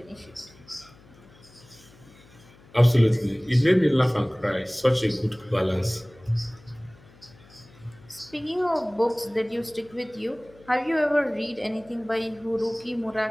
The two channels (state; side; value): noise; left; hum, 25 dB below the sound